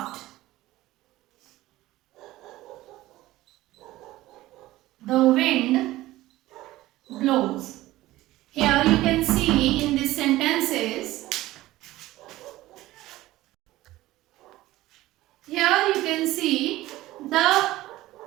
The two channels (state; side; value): quieter; left; 16.8 dB